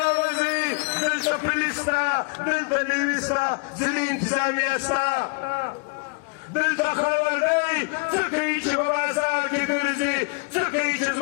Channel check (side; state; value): right; quieter; 33.9 dB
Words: راوځئ دلته پولیس شته دلته نیوي شته ځینې انتظامیه شته دلته خبر دی څه کوي چې په بازار کې ګرځي څه کوي چې